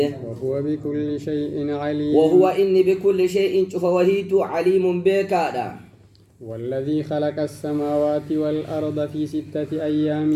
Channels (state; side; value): identical; both; correlation 1.00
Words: وهو بكل شيء عليم. وهو إني بكل شيء فوهيت عليم بكادا. والذي خلق السماوات والأرض في 6